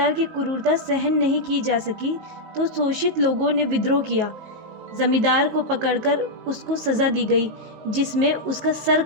की क्रूरता सहन नहीं की जा सकी तो शोषित लोगों ने विद्रोह किया। जमींदार को पकड़कर उसको सजा दी गई जिसमें उसका सर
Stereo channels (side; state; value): left; late; 19 ms